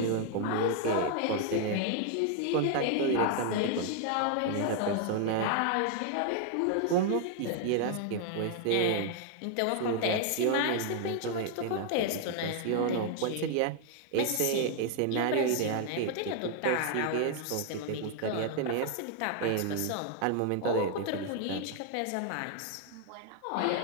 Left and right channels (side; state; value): both; different; correlation 0.00